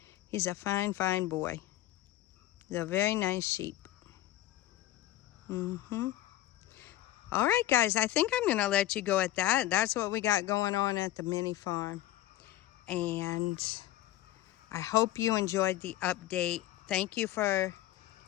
He's a fine, fine boy. He's a very nice sheep. All right, guys, I think I'm going to let you go at that. That's what we got going on at the mini farm. And I hope you enjoyed the update. Thank you for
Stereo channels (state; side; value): quieter; right; 14.6 dB